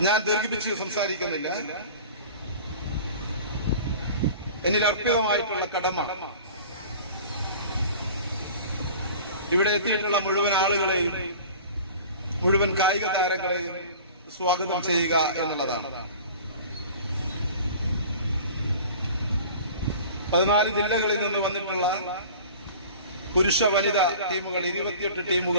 ഞാൻ ദീർഘിപ്പിച്ച് സംസാരിക്കുന്നില്ല. എന്നിൽ അർപ്പിതമായിട്ടുള്ള കടമ ഇവിടെ എത്തിയിട്ടുള്ള മുഴുവൻ ആളുകളെയും മുഴുവൻ കായിക താരങ്ങളെയും സ്വാഗതം ചെയ്യുക എന്നുള്ളതാണ്. 14 ജില്ലകളിൽ നിന്ന് വന്നിട്ടുള്ള പുരുഷ വനിതാ ടീമുകൾ 28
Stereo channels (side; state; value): both; inverted; correlation -0.41